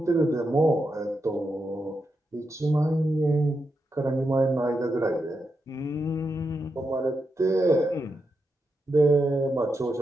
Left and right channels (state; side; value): normal; both; correlation 0.86